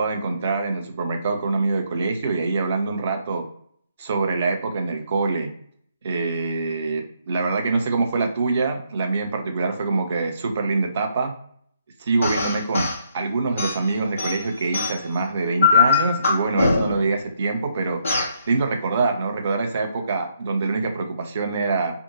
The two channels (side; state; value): both; inverted; correlation -0.73